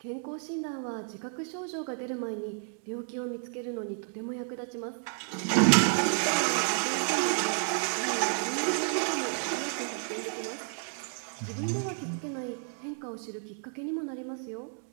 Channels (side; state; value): left; silent; 57 dB below the other